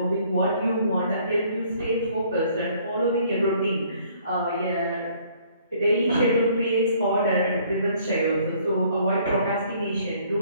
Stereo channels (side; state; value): both; inverted; correlation -0.60